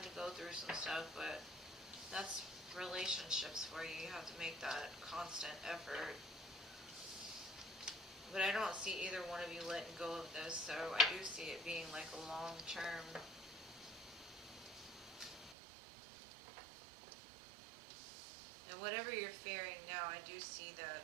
to go through some stuff. But that's relationships for you. You have to make that constant effort. But I don't see either one of you letting go of this, so I do see it being like a long-term. And whatever you're fearing now, I do see that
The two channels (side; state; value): left; drops out; at 15.6 s